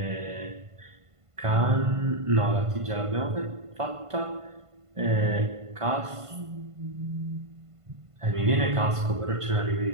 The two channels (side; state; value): left; late; 1.5 ms